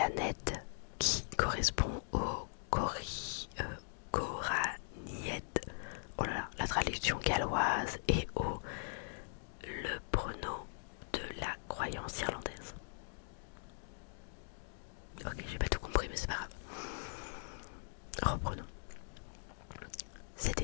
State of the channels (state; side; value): silent; right; digital silence